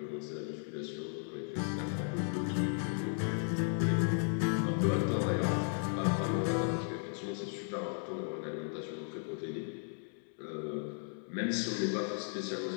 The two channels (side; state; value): right; silent; 54 dB below the other